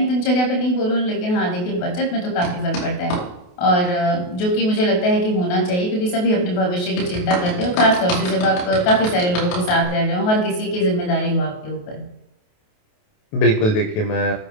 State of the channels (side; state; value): right; late; 28 ms